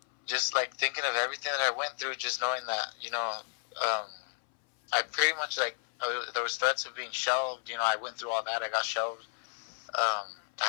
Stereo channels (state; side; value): silent; right; 56 dB below the other